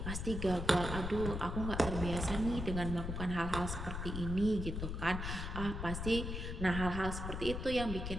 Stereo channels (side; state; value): left; noise; rumble, 4 dB below the sound